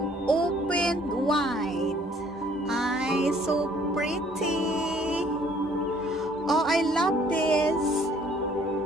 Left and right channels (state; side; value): normal; both; correlation 0.60